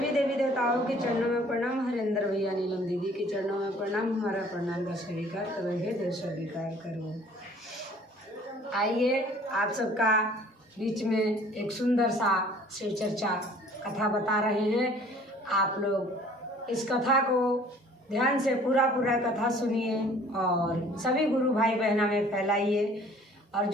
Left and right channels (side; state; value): both; normal; correlation 0.53